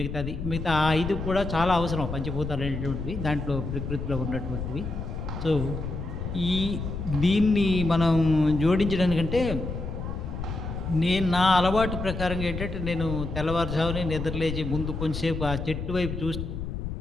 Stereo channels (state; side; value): noise; left; rumble, 5 dB below the sound